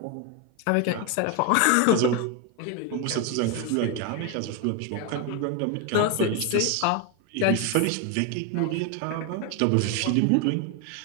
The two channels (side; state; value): both; different; correlation 0.01